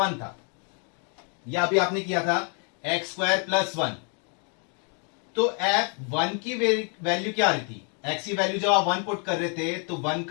था, या अभी आपने किया था x² प्लस 1, तो f1 की वैल्यू क्या आ रही थी, x की वैल्यू जब आप 1 पुट कर रहे थे तो 1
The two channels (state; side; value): quieter; right; 39.5 dB